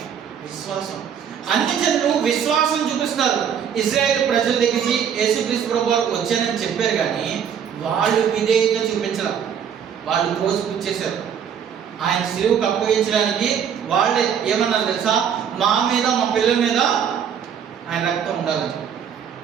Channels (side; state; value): left; quieter; 8.1 dB